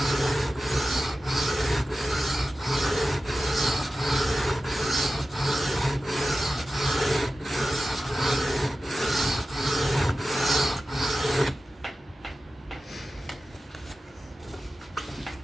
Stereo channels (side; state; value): both; normal; correlation 0.94